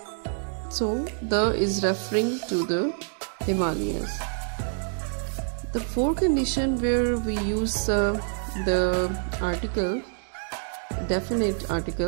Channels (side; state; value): left; silent; digital silence